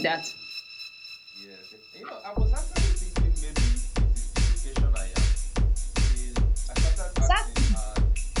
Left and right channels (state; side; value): identical; both; correlation 1.00